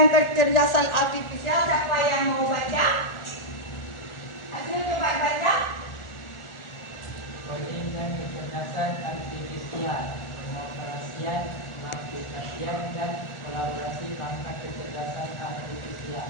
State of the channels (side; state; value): right; late; 1.4 ms